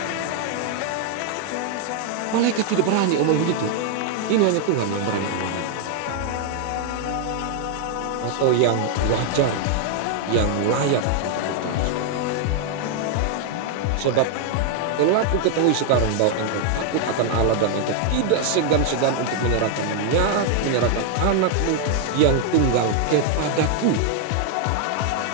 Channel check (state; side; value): different; both; correlation 0.00